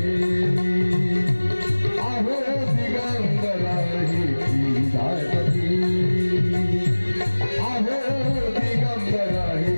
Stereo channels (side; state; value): both; inverted; correlation -1.00